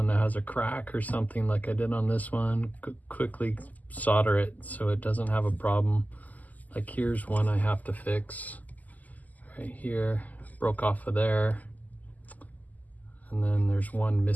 that has a crack or something like I did on this one, quickly solder it so it doesn't have a problem. Like here's one I have to fix right here, broke off of there. And then there's one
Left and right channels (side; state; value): right; late; 0.079 ms